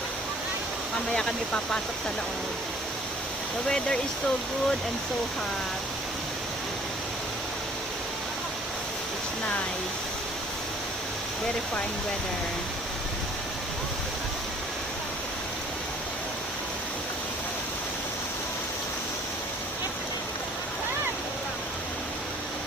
Mamaya kami papasok sa loob. The weather is so good and so hot. It's nice. Very fine weather.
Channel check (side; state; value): both; normal; correlation 0.54